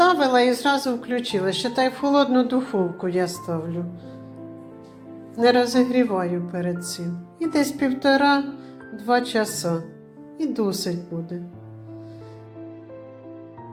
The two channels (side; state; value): both; identical; correlation 1.00